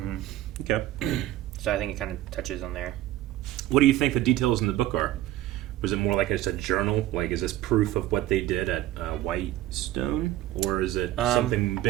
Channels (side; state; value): left; quieter; 14.4 dB